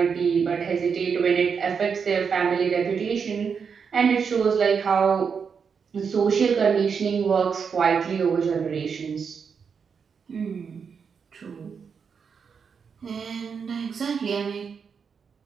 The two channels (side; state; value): left; quieter; 6.2 dB